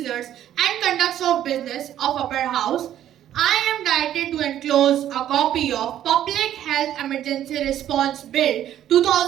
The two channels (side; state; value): left; quieter; 11.5 dB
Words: and conducts of business of Upper House, I am directed to enclose a copy of Public Health Emergency Response Bill